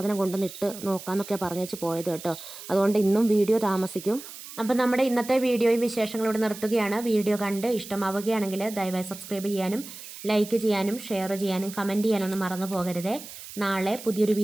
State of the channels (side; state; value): right; noise; hiss, 14 dB below the sound